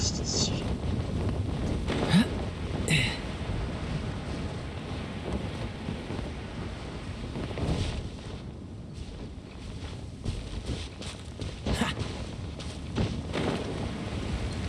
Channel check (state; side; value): identical; both; correlation 1.00